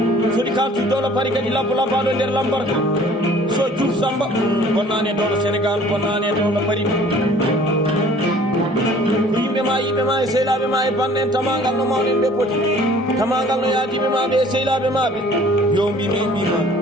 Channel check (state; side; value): normal; both; correlation 0.52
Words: soɗi kaltuy dowlo pari kadi labbo labbaɗo nder lambarka so Diouf Samba bonnani e dowlo Sénégal bonnani e dowlo pari ko yimɓe ma e sehlaɓe ma e bande en tamagal no mawnen ɓe poti tamagal no yaadiɓe maɓe e sehlaɓe maɓe yo mbimi mbima